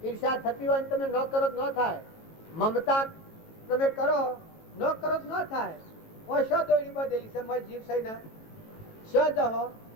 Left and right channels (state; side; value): late; right; 18 ms